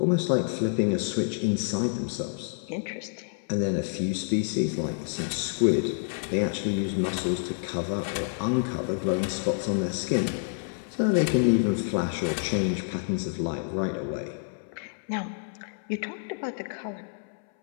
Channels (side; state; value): right; silent; 59 dB below the other